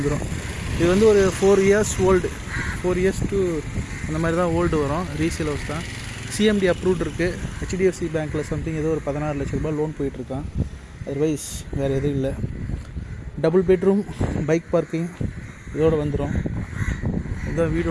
இது வந்து ஒரு 4 இயர்ஸ் ஓல்டு, 4 இயர்ஸ் டு அந்த மாதிரி தான் ஓல்டு வரும். ரீசேல் ஹவுஸ் தான், சிஎம்டி அப்ரூவ்ட் இருக்குது. ஹெச்டிஎஃப்சி பேங்க்கில் சம்திங் ஏதோ ஒரு 16 லட்ச ரூபாய் லோன் போயிட்டுருக்கான். அதர்வைஸ் வேறு எதுவும் இல்லை. டபுள் பெட்ரூம், பைக் பார்க்கிங் இதோடு வந்துடும். இதுதான்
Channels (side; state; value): both; identical; correlation 1.00